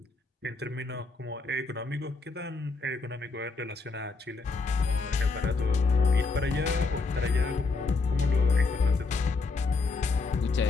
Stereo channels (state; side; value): quieter; right; 4.0 dB